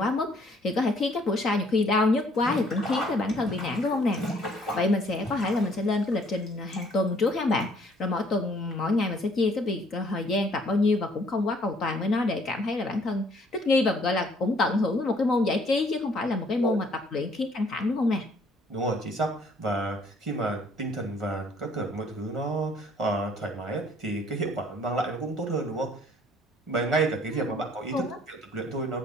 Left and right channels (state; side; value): normal; both; correlation 0.61